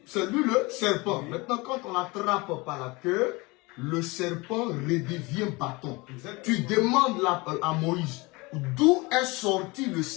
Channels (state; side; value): quieter; right; 24.7 dB